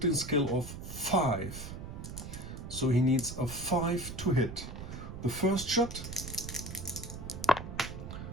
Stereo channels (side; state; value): right; noise; rumble, 9 dB below the sound